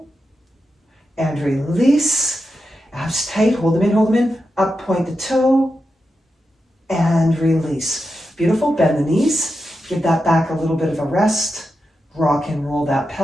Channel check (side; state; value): both; normal; correlation 0.88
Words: and release. Abs tight, hold them in, up, point the toe, and release. Beautiful, bend the knees, give that back a little bit of a rest, rock and roll that